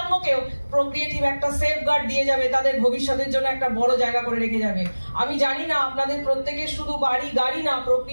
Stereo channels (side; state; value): both; inverted; correlation -1.00